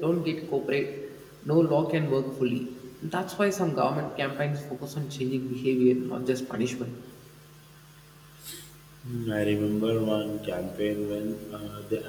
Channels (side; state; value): both; identical; correlation 1.00